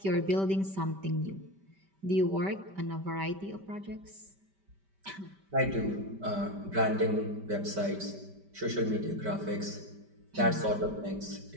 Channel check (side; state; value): left; late; 5.1 ms